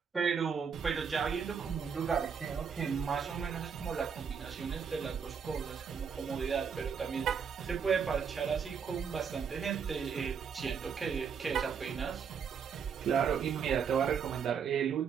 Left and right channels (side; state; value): left; quieter; 6.7 dB